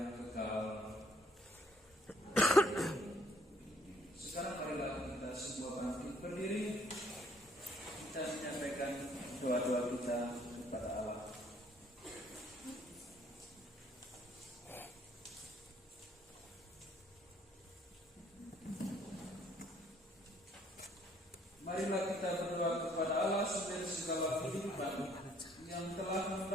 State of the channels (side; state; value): both; normal; correlation 0.64